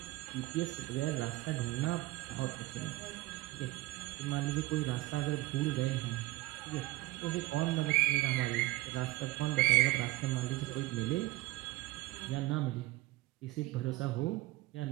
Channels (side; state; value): left; quieter; 19.3 dB